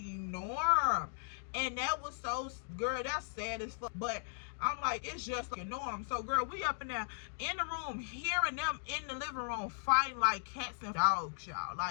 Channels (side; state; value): right; silent; digital silence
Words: And that was so, girl, that's sad as fuck. But I'm like, it's just like a norm. So girl, we up in there in the room, hearing them in the living room fighting like cats and dogs, y'all.